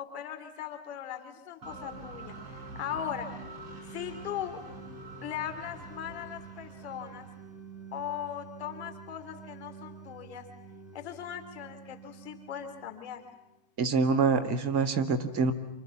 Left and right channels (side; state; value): left; late; 2.1 ms